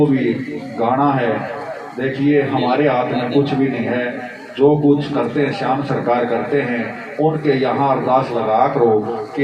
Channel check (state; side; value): identical; both; correlation 1.00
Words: भी गाना है देखिए हमारे हाथ में कुछ भी नहीं है, जो कुछ करते हैं श्याम सरकार करते हैं। उनके यहाँ अरदास लगा करो कि